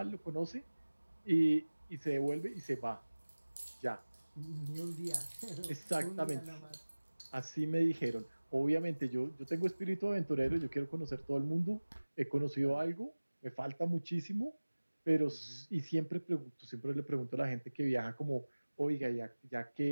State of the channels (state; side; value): inverted; both; correlation -1.00